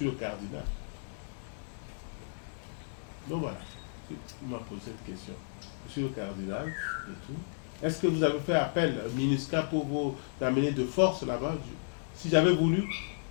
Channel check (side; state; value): right; silent; 56 dB below the other